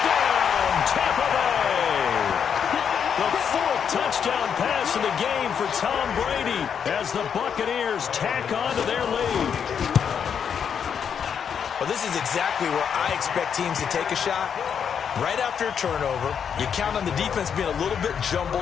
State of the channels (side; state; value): right; quieter; 7.5 dB